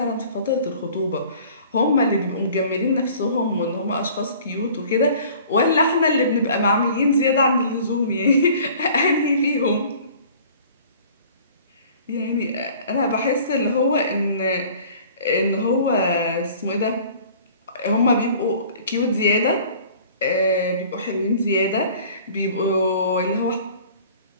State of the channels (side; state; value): both; inverted; correlation -0.49